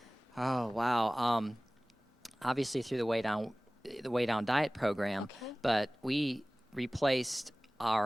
Oh, wow. Obviously through the Way Down diet program, but we replaced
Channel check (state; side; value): normal; both; correlation 0.98